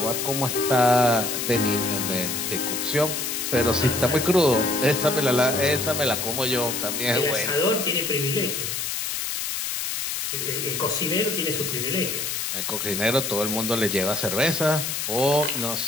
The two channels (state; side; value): noise; left; hiss, 2 dB below the sound